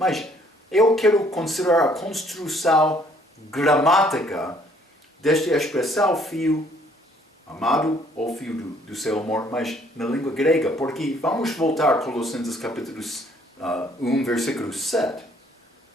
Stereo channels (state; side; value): normal; both; correlation 0.62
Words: eu quero considerar a construção gramática desta expressão filho amado ou filho do seu amor, mas na língua grega, porque vamos voltar a Colossenses capítulo 1, versículo 7,